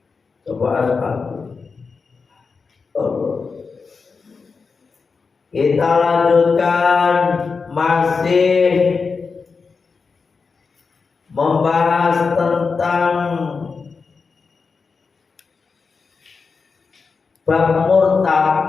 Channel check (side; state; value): right; quieter; 4.9 dB